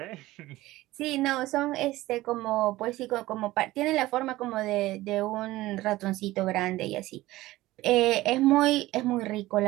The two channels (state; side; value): quieter; left; 17.5 dB